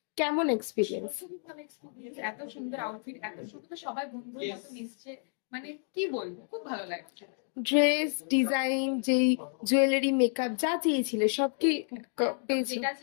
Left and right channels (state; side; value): silent; right; 57 dB below the other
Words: কেমন এক্সপিরিয়েন্স? খুবই ভালো এক্সপিরিয়েন্স। এত সুন্দর আউটফিট, এত সুন্দর, সবাই বন্ধুর মতো মিশছে, মানে কি বলবো, খুব ভালো লাগছে। ড্রেস ডিজাইন, যেই জুয়েলারি মেকআপ যা চেয়েছিলে সব কি পেয়েছো? যেটা